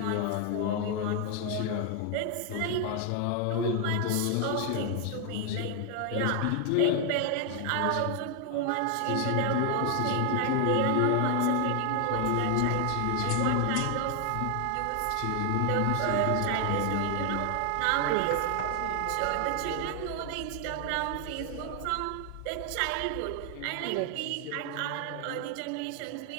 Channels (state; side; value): different; both; correlation 0.00